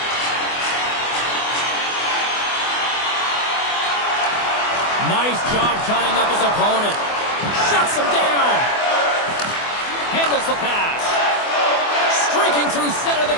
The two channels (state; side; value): late; right; 24 ms